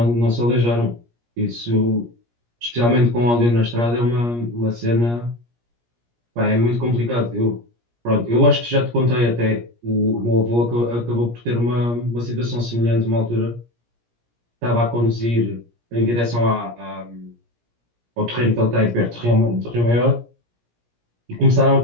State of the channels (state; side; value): late; left; 17 ms